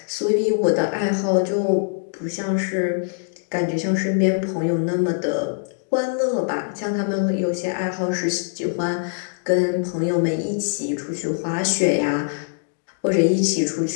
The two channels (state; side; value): silent; right; digital silence